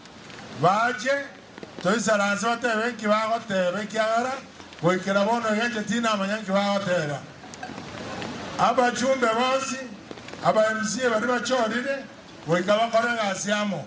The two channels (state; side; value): identical; both; correlation 1.00